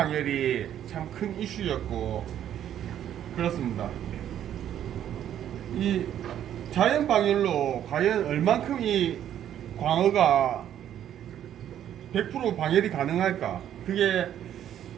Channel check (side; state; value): left; quieter; 10.6 dB